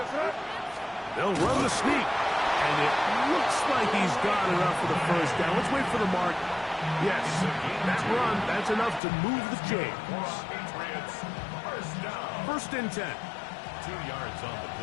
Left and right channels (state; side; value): drops out; right; at 9.0 s